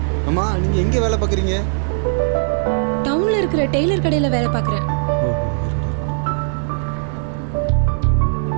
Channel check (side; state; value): left; silent; digital silence